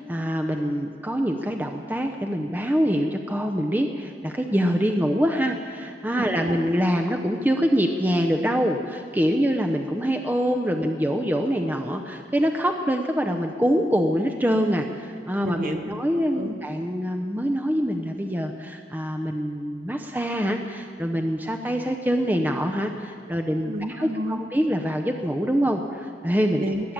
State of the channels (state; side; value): normal; both; correlation 0.88